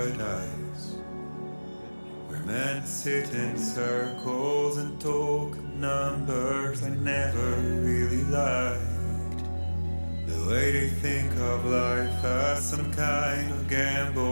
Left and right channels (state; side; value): inverted; both; correlation -1.00